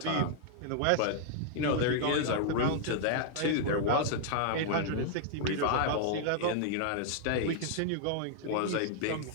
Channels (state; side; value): different; both; correlation -0.01